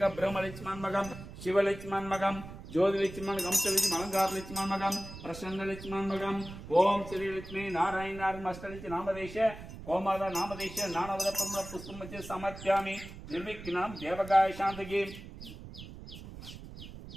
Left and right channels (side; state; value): right; noise; rumble, 13 dB below the sound